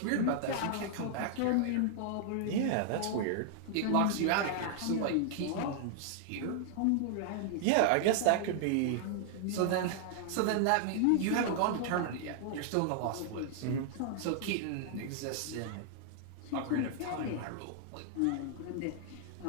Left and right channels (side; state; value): both; different; correlation -0.01